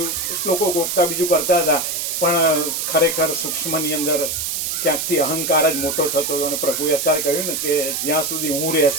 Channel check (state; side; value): noise; right; hiss, 2 dB below the sound